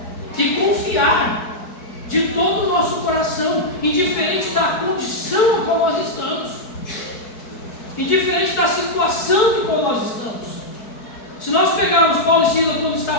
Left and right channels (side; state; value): right; late; 4.6 ms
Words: e confiar de todo o nosso coração, indiferente da condição a qual nós estamos, indiferente da situação em qual nós estamos. Se nós pegarmos Paulo e Silas quando está